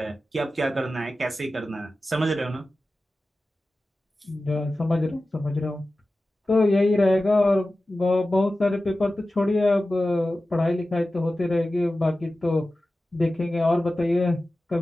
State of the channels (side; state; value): both; normal; correlation 0.95